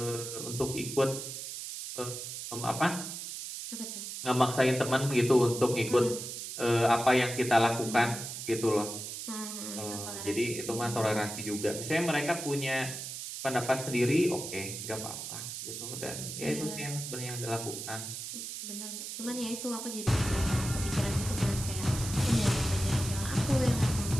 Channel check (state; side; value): noise; right; hiss, 7 dB below the sound